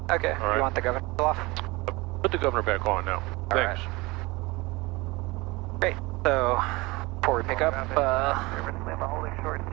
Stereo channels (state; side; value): quieter; left; 23.0 dB